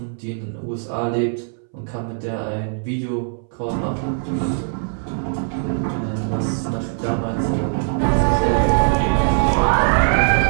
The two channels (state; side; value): silent; left; 65 dB below the other